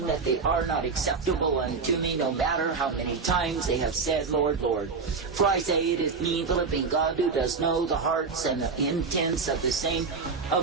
that they are not acceptable unto me, no matter how many times they have said, Lord, Lord. For I say it is me, the living God, who does know the hearts and the intents of the same,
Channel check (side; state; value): left; quieter; 4.8 dB